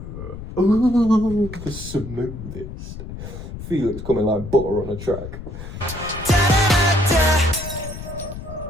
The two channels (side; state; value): left; noise; rumble, 10 dB below the sound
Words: the smoothest. Felix coming like butter on a track.